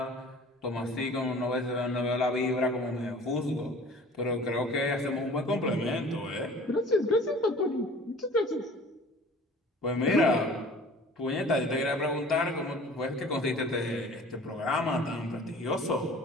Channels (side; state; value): both; normal; correlation 0.46